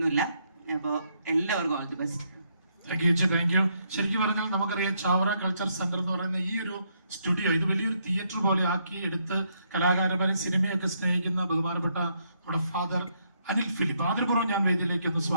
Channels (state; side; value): inverted; both; correlation -0.74